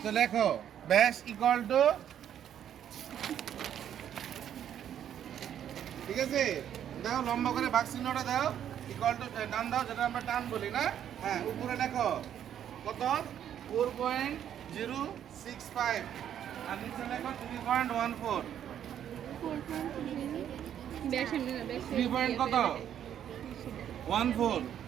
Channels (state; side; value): quieter; left; 9.9 dB